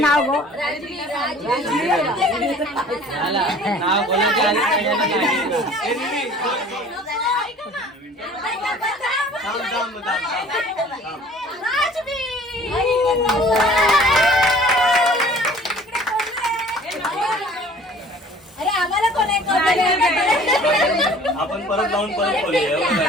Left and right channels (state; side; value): normal; both; correlation 0.49